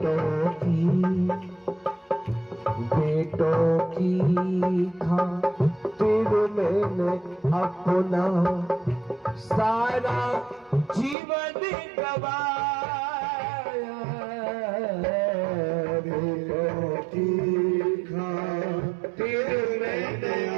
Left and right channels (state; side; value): drops out; left; at 11.2 s